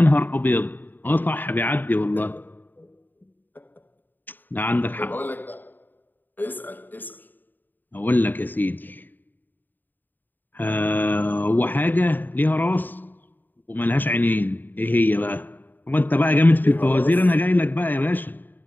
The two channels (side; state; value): right; late; 0.090 ms